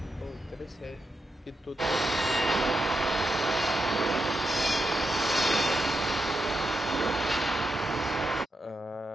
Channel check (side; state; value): both; normal; correlation 0.85